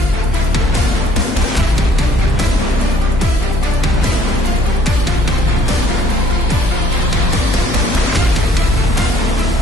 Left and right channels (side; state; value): left; noise; hum, 7 dB below the sound